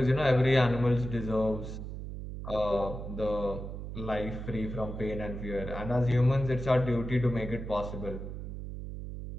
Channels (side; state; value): right; noise; hum, 8 dB below the sound